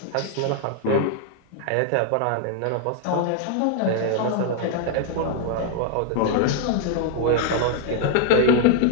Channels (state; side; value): different; both; correlation 0.00